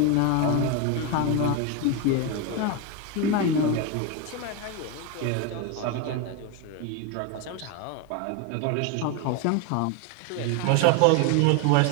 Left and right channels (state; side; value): different; both; correlation 0.02